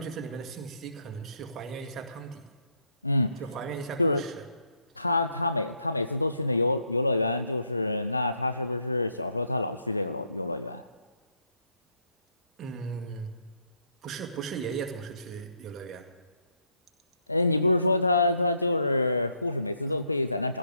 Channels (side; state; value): both; inverted; correlation -0.76